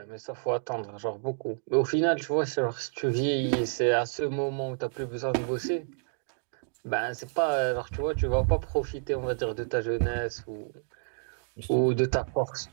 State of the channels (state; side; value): silent; left; digital silence